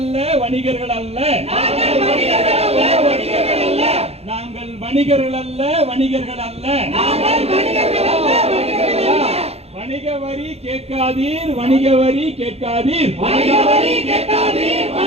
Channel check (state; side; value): late; left; 0.30 ms